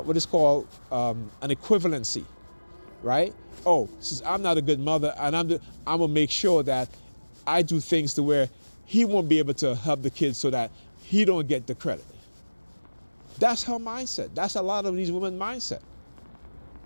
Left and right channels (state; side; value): inverted; both; correlation -1.00